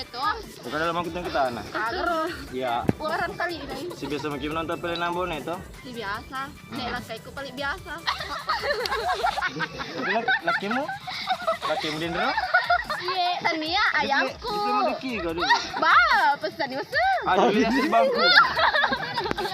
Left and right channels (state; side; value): identical; both; correlation 1.00